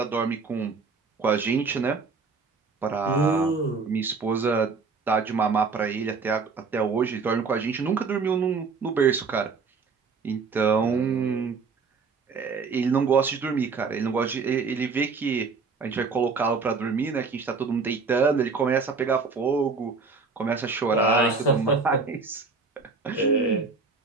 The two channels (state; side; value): quieter; left; 4.7 dB